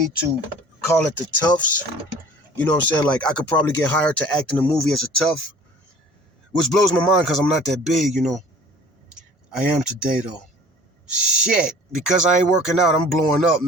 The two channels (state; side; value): normal; both; correlation 0.48